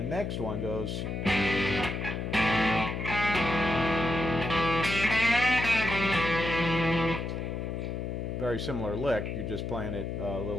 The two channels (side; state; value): left; noise; hum, 4 dB below the sound